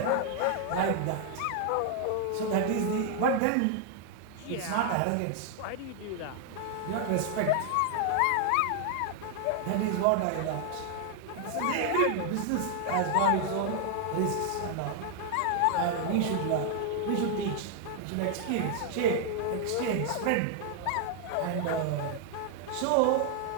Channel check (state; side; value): different; both; correlation 0.00